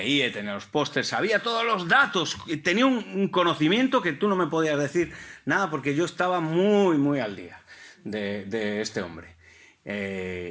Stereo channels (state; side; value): identical; both; correlation 1.00